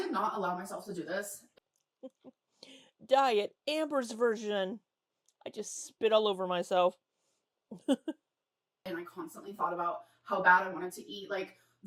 not allow myself to do this, Diet Amber's version. I just spit all over myself. and I constantly thought about how bad I wanted to eat like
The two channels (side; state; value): both; identical; correlation 1.00